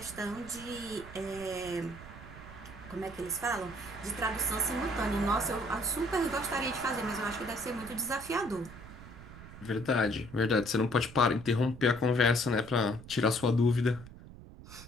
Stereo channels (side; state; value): right; noise; rumble, 16 dB below the sound